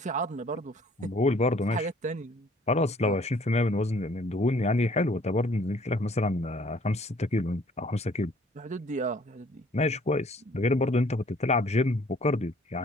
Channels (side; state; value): both; normal; correlation 0.58